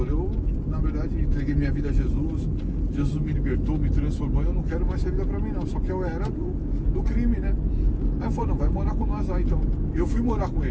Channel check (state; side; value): identical; both; correlation 1.00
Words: eu na verdade entreguei minha vida a Jesus, Jesus me libertou, me transformou, eu não quero mais essa vida pra mim não, só que eu era do crime, né? Aí ele falou, não, vai morar com nós lá então. Eu fui morar com